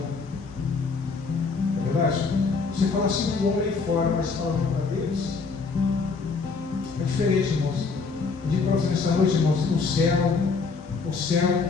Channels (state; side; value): quieter; right; 4.6 dB